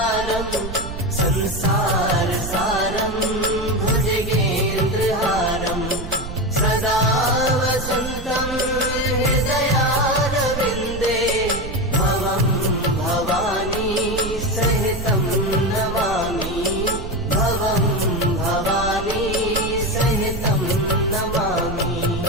संसारसारं भुजगेन्द्रहारं सदा वसन्तं हृदयारविन्दे भवं भवानी सहितं नमामि भवं भवानी सहितं नमामि।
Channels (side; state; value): right; noise; rumble, 8 dB below the sound